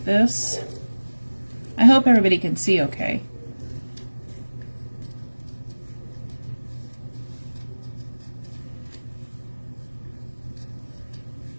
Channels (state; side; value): inverted; both; correlation -1.00